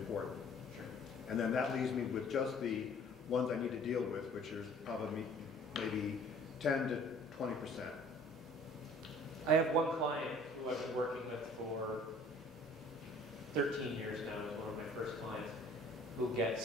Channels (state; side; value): normal; both; correlation 0.52